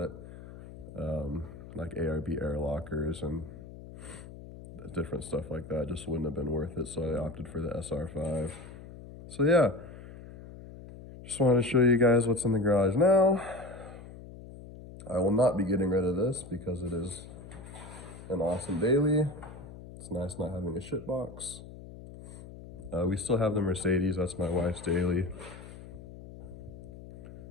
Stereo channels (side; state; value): left; noise; hum, 15 dB below the sound